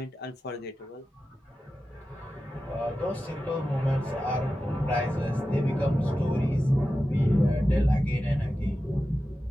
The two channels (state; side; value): normal; both; correlation 0.93